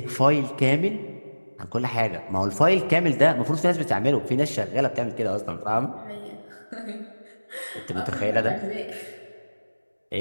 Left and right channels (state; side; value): inverted; both; correlation -1.00